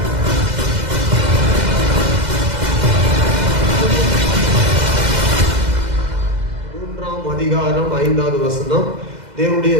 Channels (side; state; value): left; late; 2.0 ms